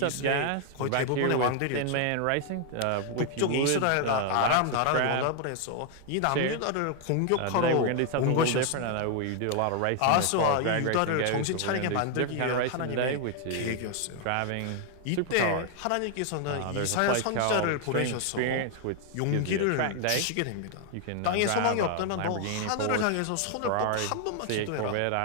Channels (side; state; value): both; different; correlation 0.00